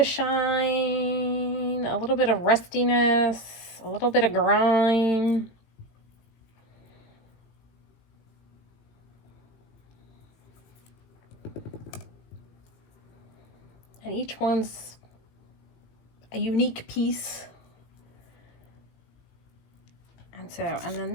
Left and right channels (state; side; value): late; right; 18 ms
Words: shine, a little bit of rustiness, a little bit of grime. And each one's a unique piece. And then